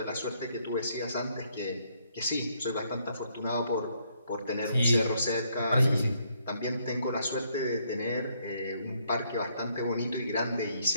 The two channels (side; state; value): both; inverted; correlation -0.71